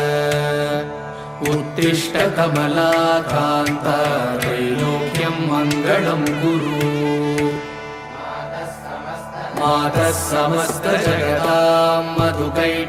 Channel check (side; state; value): both; identical; correlation 1.00